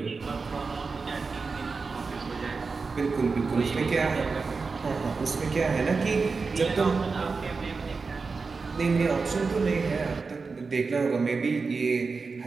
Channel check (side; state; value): left; quieter; 4.5 dB